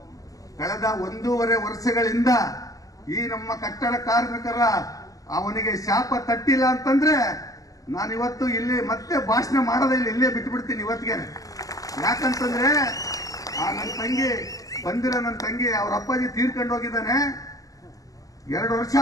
ಕಳೆದ 1.5 ವರ್ಷಗಳಿಂದ ಈ ನಮ್ಮ ಕಟ್ಟಡ ಕಾರ್ಮಿಕರ ಅವನಿಗೆ ಶಾಪ ತಟ್ಟಿಲ್ಲ ಅಂತಂದ್ರೆ ನಾನು ಇವತ್ತು ಇಲ್ಲಿ ಮತ್ತೆ ಭಾಷಣ ಮಾಡೋದಿಲ್ಲ, ಇಲ್ಲೇ ಬಿಟ್ಬಿಡ್ತೀನಿ ಇವತ್ತಿಗೆ. ಯಾಕಂತಂದ್ರೆ ನನ್ನ ತಂಗಿ ನನ್ನ ತಂಗಿ ಅವ್ರ ಅಪ್ಪಾಜಿ ತೀರ್ಕೊಂಡು ಹೋಗಿದ್ದಾನೆ. 2 ವರ್ಷ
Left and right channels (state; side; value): late; right; 0.17 ms